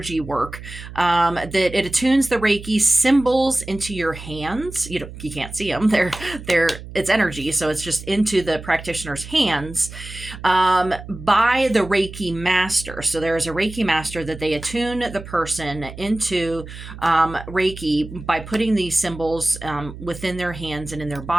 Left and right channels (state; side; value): noise; right; hum, 13 dB below the sound